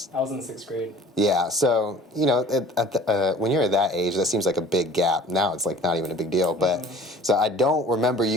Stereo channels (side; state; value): both; normal; correlation 0.48